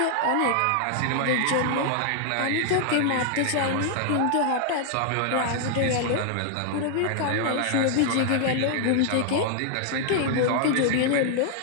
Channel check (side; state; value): both; different; correlation -0.01